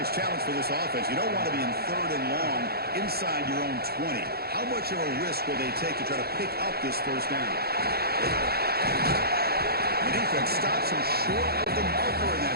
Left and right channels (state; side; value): late; left; 0.46 ms